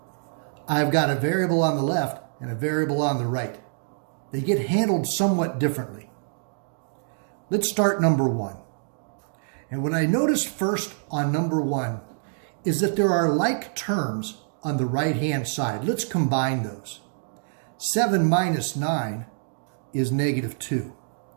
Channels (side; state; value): left; silent; digital silence